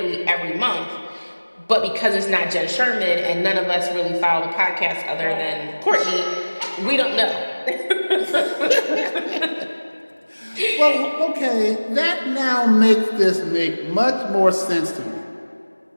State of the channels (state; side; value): inverted; both; correlation -1.00